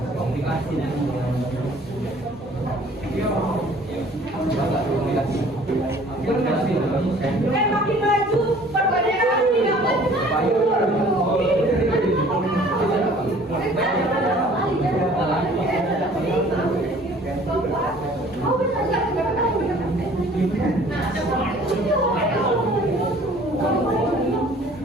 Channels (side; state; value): both; normal; correlation 0.52